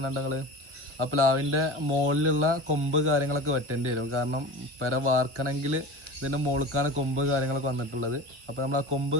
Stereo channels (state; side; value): late; left; 1.4 ms